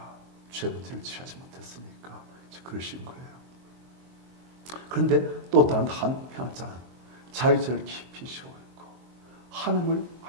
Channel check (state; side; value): late; left; 23 ms